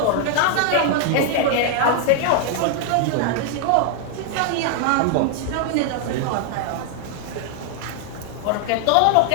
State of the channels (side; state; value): both; different; correlation 0.00